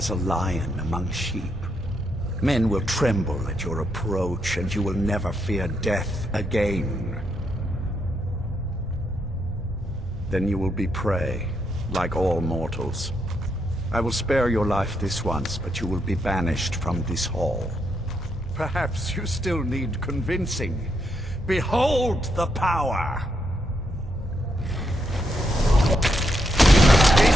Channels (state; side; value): normal; both; correlation 0.79